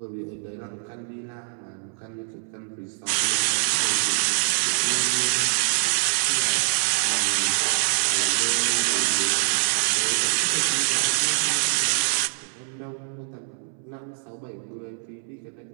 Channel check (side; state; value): left; silent; 62 dB below the other